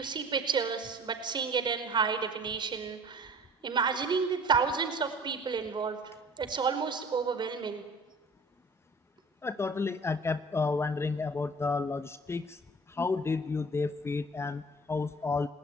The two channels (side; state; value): both; normal; correlation 0.47